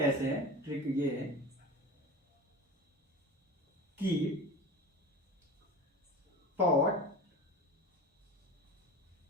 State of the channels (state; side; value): normal; both; correlation 0.32